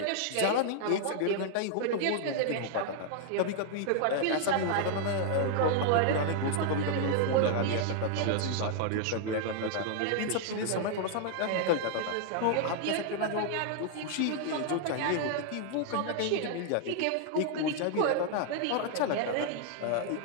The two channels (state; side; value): different; both; correlation 0.00